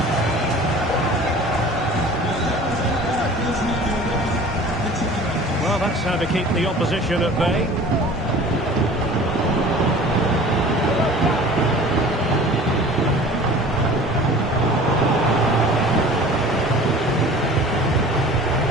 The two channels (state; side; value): normal; both; correlation 0.44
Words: Well, that's how to keep the opposition at bay.